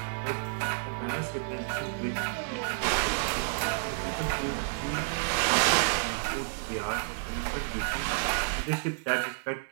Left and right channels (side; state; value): left; silent; digital silence